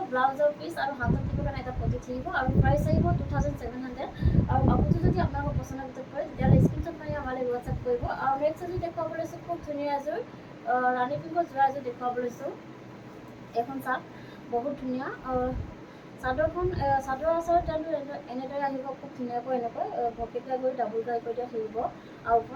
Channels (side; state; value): both; identical; correlation 1.00